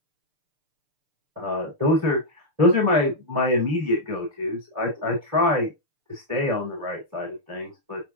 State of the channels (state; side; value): late; left; 6.7 ms